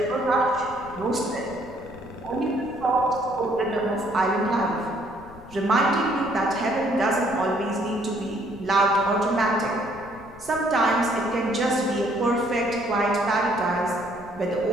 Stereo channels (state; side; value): noise; left; rumble, 20 dB below the sound